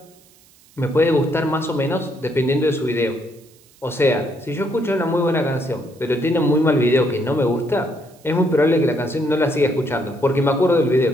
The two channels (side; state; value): right; noise; hiss, 29 dB below the sound